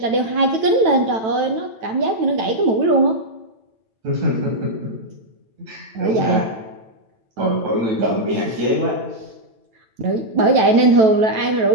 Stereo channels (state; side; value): late; left; 9.1 ms